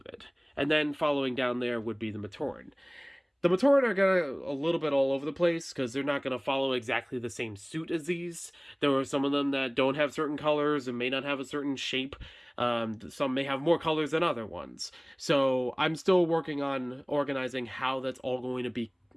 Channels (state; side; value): identical; both; correlation 1.00